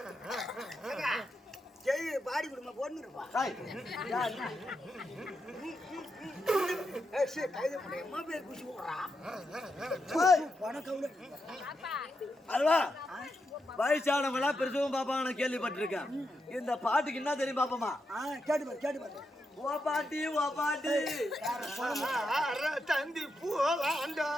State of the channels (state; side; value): normal; both; correlation 0.85